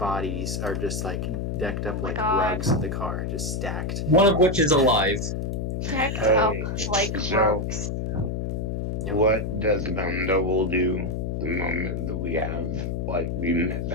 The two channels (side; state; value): left; noise; hum, 2 dB below the sound